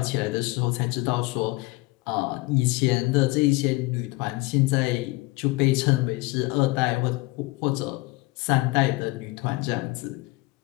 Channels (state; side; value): quieter; right; 22.7 dB